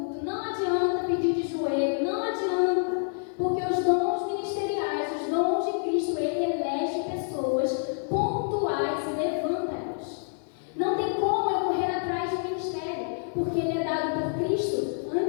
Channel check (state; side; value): silent; right; 60 dB below the other